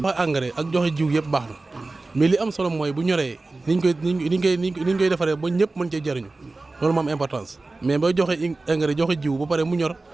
engrais ak joxe jiw yëpp baax na mais li am solo mooy bu ñoree niñ koy defaree ba ñëpp mën cee jëriñu loolu moo am importance mais ba joxe engrais joxe jiw ba pare mu ñor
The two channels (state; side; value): quieter; left; 3.3 dB